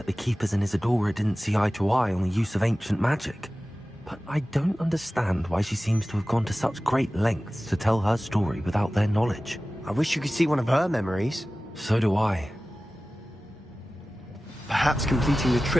the Keepers and Isadora didn't see eye to eye on the use of ancient magic. But I don't understand why she seems to have gone to such great lengths to tell her story without their knowledge. I wish you could see one of her memories. So do I. Perhaps completing the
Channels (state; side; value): normal; both; correlation 0.96